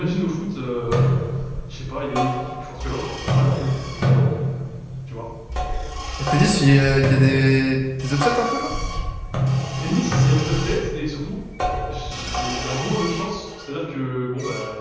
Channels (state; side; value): identical; both; correlation 1.00